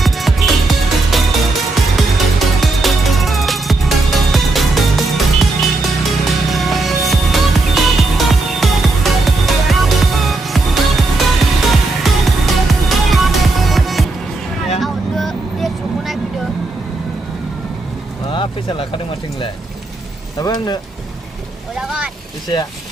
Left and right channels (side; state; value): left; quieter; 3.1 dB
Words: Fisa lakukan macam ni, tapi anda. Udah kan? Fisa.